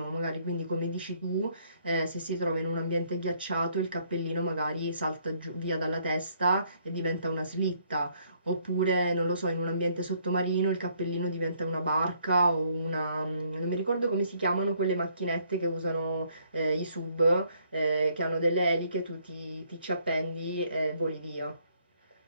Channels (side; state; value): both; inverted; correlation -0.67